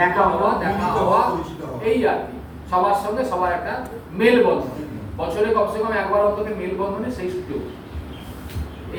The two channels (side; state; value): both; identical; correlation 1.00